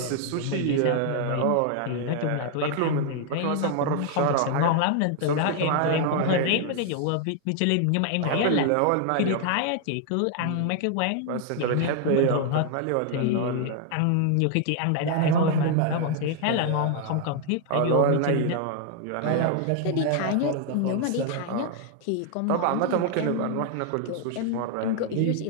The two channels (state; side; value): different; both; correlation 0.00